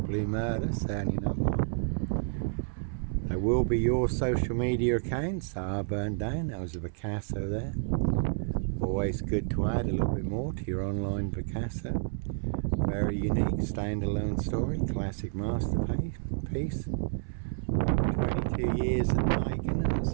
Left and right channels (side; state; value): left; silent; 58 dB below the other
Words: murder, certainly not mine. There will be your social media accounts that are burned down. That was a Picasso there. Always good to add a little bit more to your online Picasso. Very unique standalone story, classic masterpiece. 22 years in the making, and it's